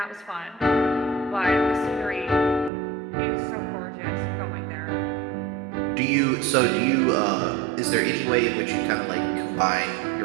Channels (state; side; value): drops out; left; at 2.7 s